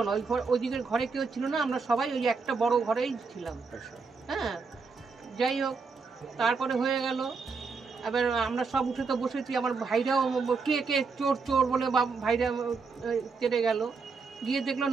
না, ওইদিকের ঘরে কেউ ছিল না, আমরা সবাই ওই একটা বড় ঘরেই ছিলাম। হ্যাঁ, যাই হোক, তারপরে হয়ে গেল। এবার আমরা সব উঠে তো বসেছি, আমার ভাইরাও কে চোর চোর বলে ভাইরা তেড়ে গেল। গিয়ে দেখলো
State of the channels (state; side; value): quieter; left; 4.7 dB